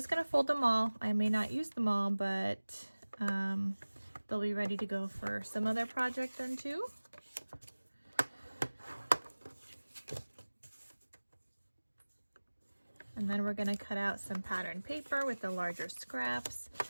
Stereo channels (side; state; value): both; inverted; correlation -1.00